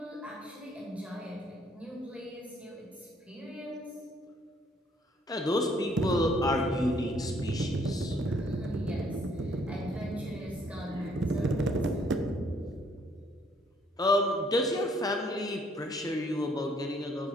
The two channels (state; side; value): normal; both; correlation 0.65